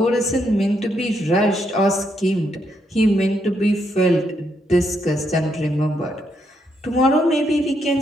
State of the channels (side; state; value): both; normal; correlation 0.77